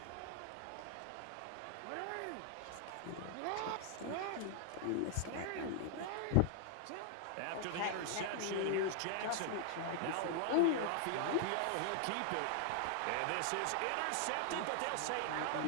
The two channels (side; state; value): both; different; correlation 0.00